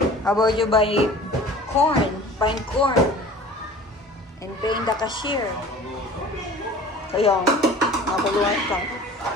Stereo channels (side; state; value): both; normal; correlation 0.43